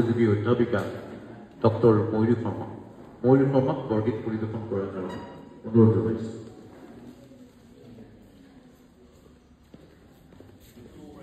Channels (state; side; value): identical; both; correlation 1.00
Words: অধ্যাপিকা ডক্টৰ ময়ূৰী শৰ্মা। ময়ূৰী শৰ্মাক বৰগীত পৰিৱেশন কৰাৰ কাৰণে অনুৰোধ জনাইছোঁ।